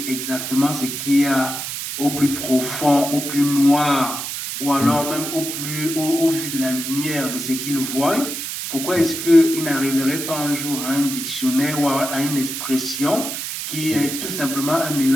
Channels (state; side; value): noise; right; hiss, 5 dB below the sound